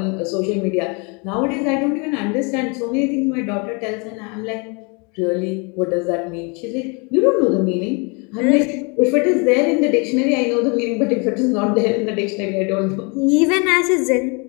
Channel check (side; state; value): right; quieter; 32.1 dB